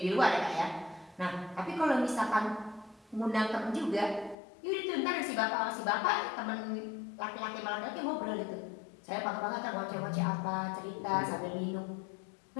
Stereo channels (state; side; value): drops out; right; at 4.4 s